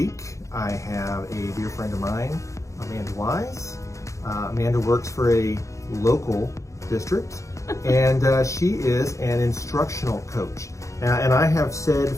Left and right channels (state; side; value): late; right; 0.15 ms